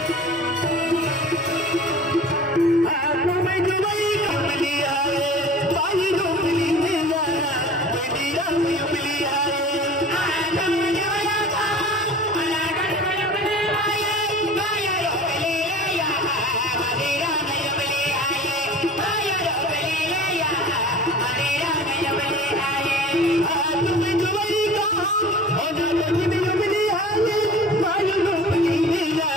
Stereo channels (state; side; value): normal; both; correlation 0.42